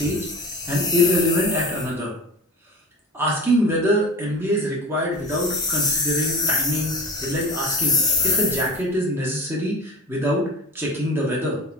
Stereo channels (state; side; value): normal; both; correlation 0.34